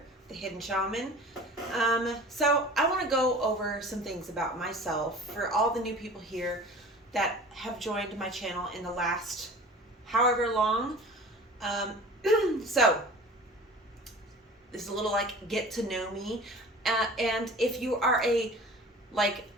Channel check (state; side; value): normal; both; correlation 0.41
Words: the Hidden Shaman. So I want to go over some things about myself for all the new people here that have joined my channel in the last however long. So this is a little like get to know me, and if you are like